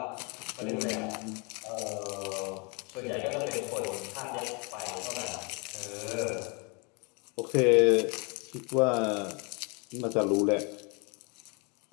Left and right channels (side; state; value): right; quieter; 32.1 dB